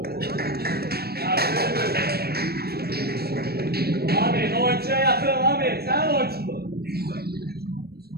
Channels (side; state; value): left; late; 0.46 ms